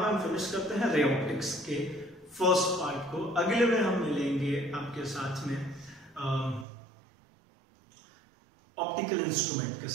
पर हम फिनिश करते हैं रे ऑप्टिक्स के फर्स्ट पार्ट को। अगले में हम मिलेंगे आपके साथ में ऑप्टिकल इंस्ट्रूमेंट के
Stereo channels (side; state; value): left; drops out; at 6.7 s